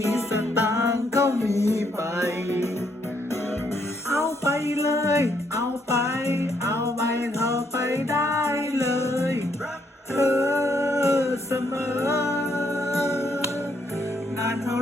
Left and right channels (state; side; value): normal; both; correlation 0.73